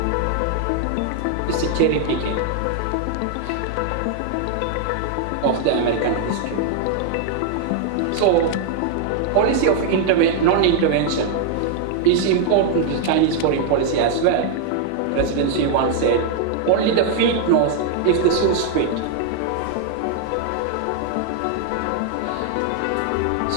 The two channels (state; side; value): different; both; correlation 0.00